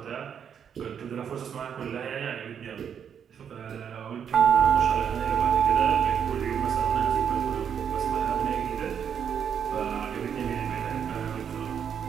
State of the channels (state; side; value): quieter; left; 8.0 dB